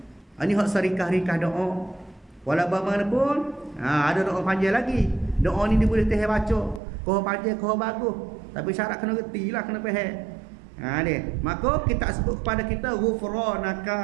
Ini hak serikah-rikah doa. Walau bagaimanapun ada doa panjang lagi. Doa ni dia boleh teh baca, kau panjang kau bagus, tapi syarat kena reti lah, kena faham. Maka kita sebut kepada kita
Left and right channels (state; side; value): drops out; left; at 6.8 s